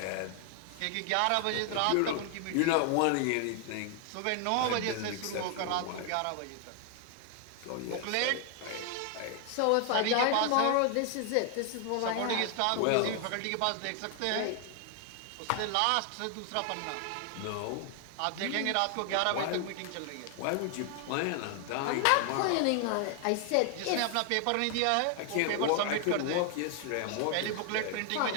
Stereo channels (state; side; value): different; both; correlation 0.00